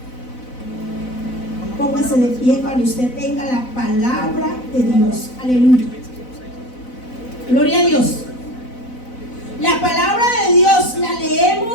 Póngase de pie cuando usted tenga la palabra de Dios. Aleluya. Gloria a Dios. La palabra de Dios la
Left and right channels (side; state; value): right; late; 4.0 ms